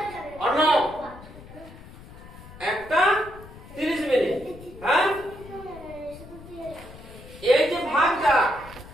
অর্ণব, একটা 30 মিনিট, হ্যাঁ? এই যে ভাগটা,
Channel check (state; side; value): noise; left; rumble, 17 dB below the sound